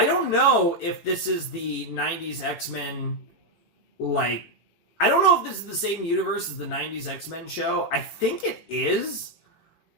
if this is the 90s X-Men, like, I don't know if this is the same universe as the 90s X-Men show. I think it is.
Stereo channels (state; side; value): late; right; 18 ms